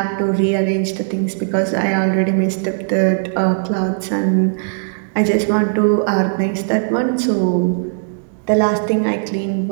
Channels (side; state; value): left; silent; digital silence